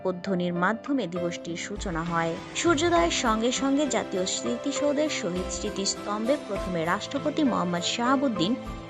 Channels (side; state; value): both; identical; correlation 1.00